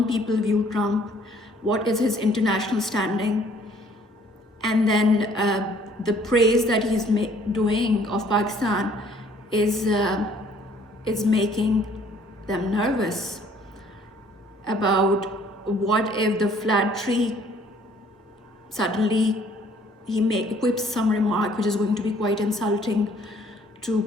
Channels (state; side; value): normal; both; correlation 0.59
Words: people view Trump, what is his international standing, and then the praise that he's doing of Pakistan is making them nervous about what if the flattery suddenly he equips some remark which is going to be quite insulting to